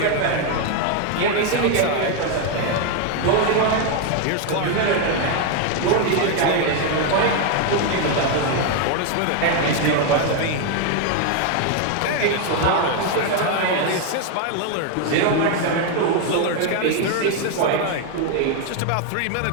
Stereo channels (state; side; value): different; both; correlation 0.01